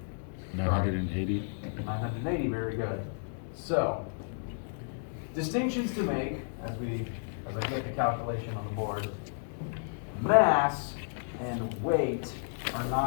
980. 980, very good. So, distinctions to make as I get the calculation on the board. Mass and weight are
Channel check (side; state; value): right; silent; digital silence